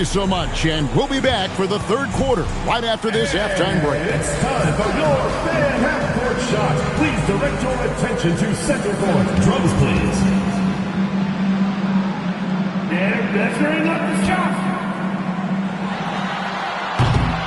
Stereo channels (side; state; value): both; identical; correlation 1.00